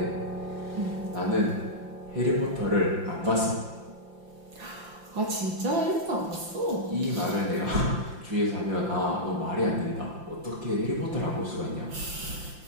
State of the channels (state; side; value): late; left; 5.8 ms